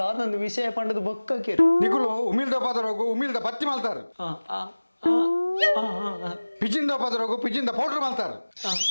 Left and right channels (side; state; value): both; inverted; correlation -1.00